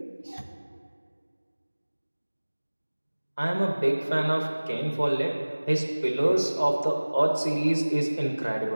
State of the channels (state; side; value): inverted; both; correlation -1.00